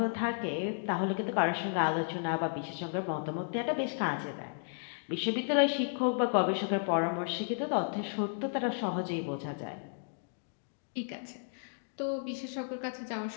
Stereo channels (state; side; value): silent; right; digital silence